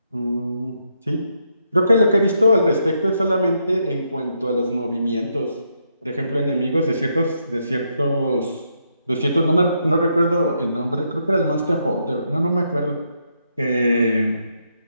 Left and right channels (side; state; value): both; inverted; correlation -0.78